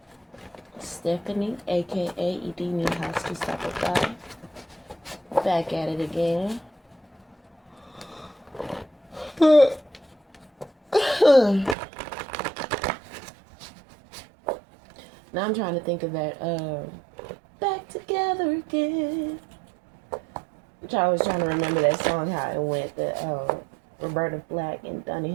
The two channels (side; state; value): left; drops out; at 11.8 s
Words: Stephanie, aka Edini Husky Supply. Back at it again. Now I'm trying to think of that Back Together Again. I was trying to remember that song, how it went, the Roberta Flack and Donny